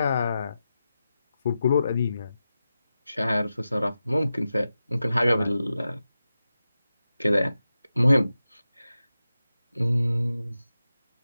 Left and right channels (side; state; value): both; inverted; correlation -0.91